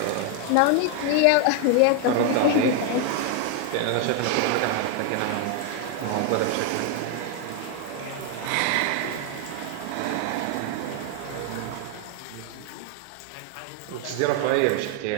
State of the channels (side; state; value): both; different; correlation 0.01